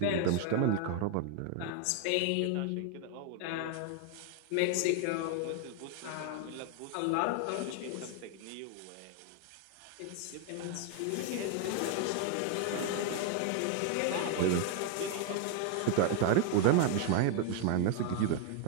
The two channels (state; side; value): different; both; correlation 0.00